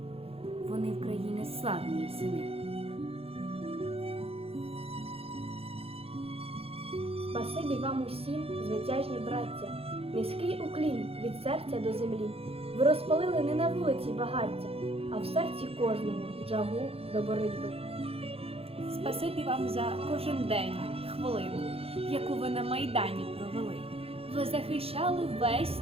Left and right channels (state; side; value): late; left; 0.28 ms